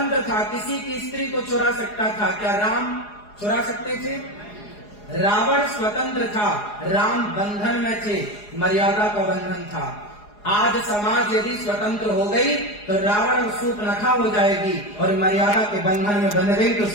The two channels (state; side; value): late; right; 4.8 ms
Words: था, किसी की स्त्री को चुरा सकता था, क्या राम चुरा सकते थे? रावण स्वतंत्र था, राम बंधन में थे, मर्यादा का बंधन था। आज समाज यदि स्वतंत्र हो गई तो रावण और शूर्पणखा हो जाएगी, और मर्यादा के बंधन में बंध गई तो